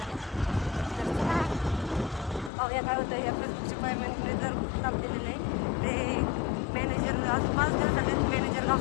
पाहूया काय होतं. या फेसबुकच्या पायमॅनकडे जर काम दिलेलं आहे ते मॅनेजर. आज 5 दिवस झाले मॅनेजर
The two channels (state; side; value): drops out; right; at 2.5 s